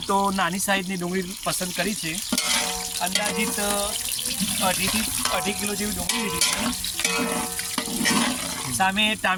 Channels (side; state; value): both; identical; correlation 1.00